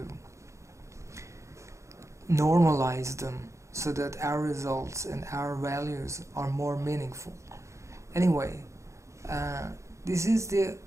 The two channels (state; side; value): late; left; 0.14 ms